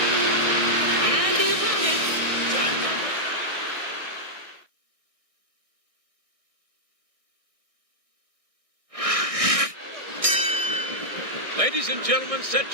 And the opponent, Ladies and gentlemen, set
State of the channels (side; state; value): left; late; 1.6 ms